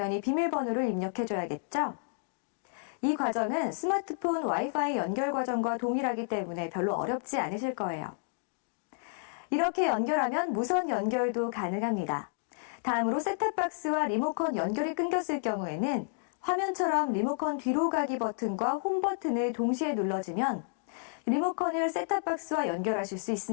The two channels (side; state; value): right; silent; digital silence